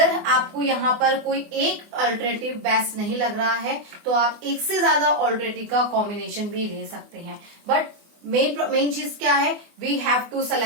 आपको यहाँ पर कोई एक अल्टरनेटिव बेस्ट नहीं लग रहा है तो आप एक से ज्यादा अल्टरनेटिव का कॉम्बिनेशन भी ले सकते हैं, बट मेन चीज क्या है, we have to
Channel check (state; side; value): late; left; 24 ms